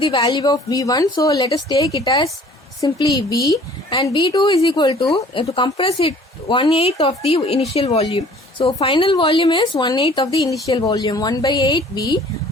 the value of V1, so let us take it as simply V, and V2 is equal to compress it 1/8 of the initial volume. So final volume is 1/8 of the initial volume, 1/8 V.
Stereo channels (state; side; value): normal; both; correlation 0.52